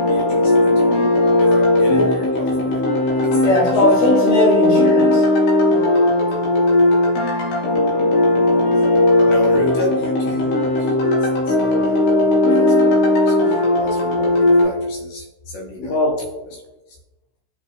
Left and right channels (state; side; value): late; right; 16 ms